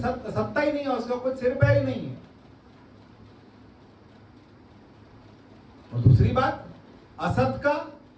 ही नहीं है, उसका कोई सिर पैर ही नहीं है। और दूसरी बात, असत का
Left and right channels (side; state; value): both; identical; correlation 1.00